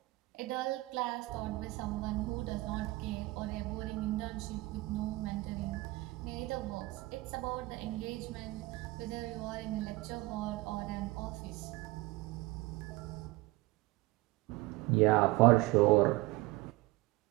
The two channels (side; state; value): left; quieter; 20.8 dB